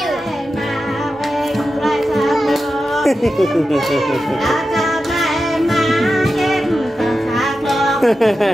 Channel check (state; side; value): normal; both; correlation 0.91